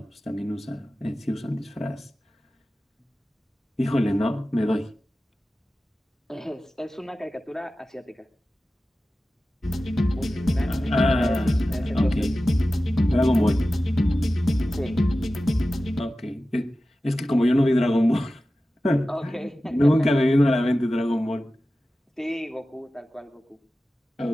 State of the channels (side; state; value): both; normal; correlation 0.95